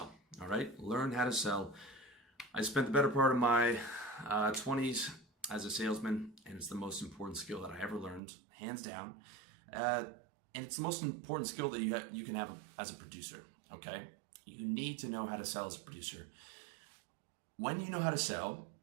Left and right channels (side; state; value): left; drops out; at 8.2 s